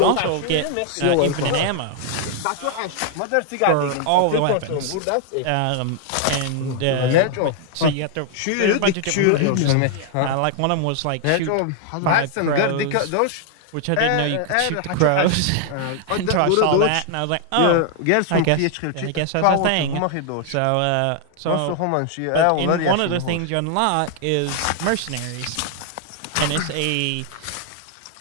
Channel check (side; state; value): both; different; correlation 0.00